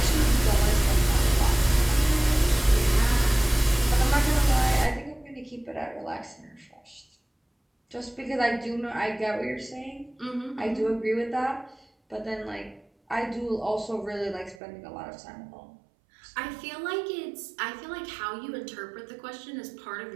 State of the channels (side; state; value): left; drops out; at 14.6 s